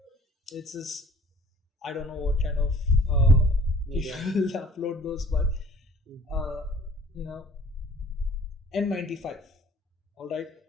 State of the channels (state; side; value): normal; both; correlation 0.51